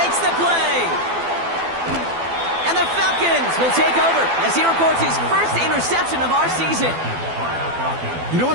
the play. And the Falcons will take over as he records his first interception of our season. You know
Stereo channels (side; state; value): left; late; 12 ms